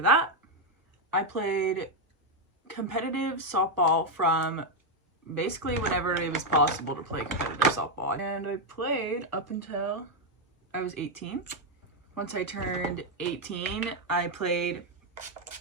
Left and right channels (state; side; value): normal; both; correlation 0.02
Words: that. I played competitive softball from basically whenever it was possible to play competitive softball. And I played up until I was 18. Once I turned 18, I played